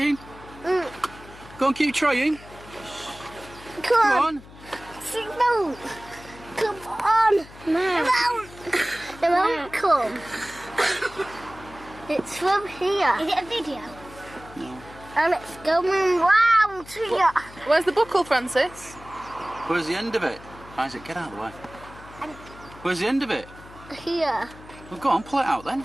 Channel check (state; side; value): noise; left; hum, 19 dB below the sound